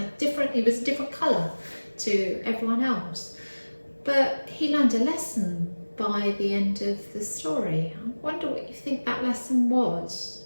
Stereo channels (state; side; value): inverted; both; correlation -1.00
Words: He was a different colour to everyone else. But he learned a lesson by the end of the story. I wonder what you think that lesson was.